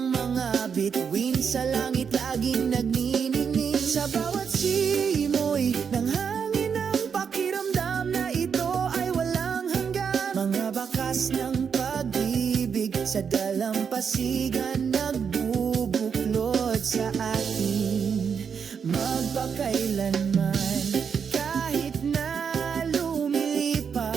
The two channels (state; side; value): quieter; left; 6.7 dB